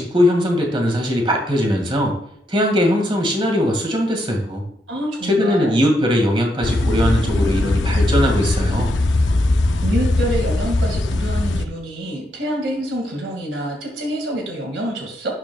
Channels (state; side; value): normal; both; correlation 0.79